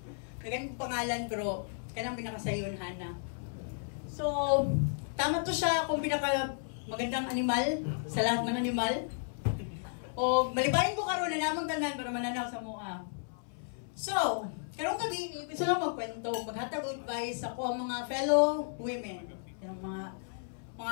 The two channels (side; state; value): right; silent; 55 dB below the other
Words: naganong pangalan, pero kanang pinakasayon, Hannah. So, tama to siya kung pinaka magandang animal sa lahat ng animal. O, malibayin ko karon na namang tanan para mananaw sa mua. So, karong gabi, gusto lang magkwento, maghatag advice ako ang mga fellow women. Yung